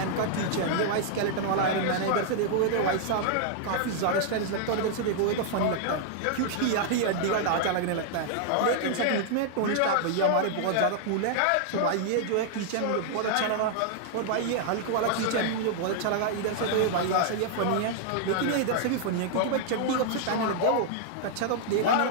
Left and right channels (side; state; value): both; different; correlation -0.01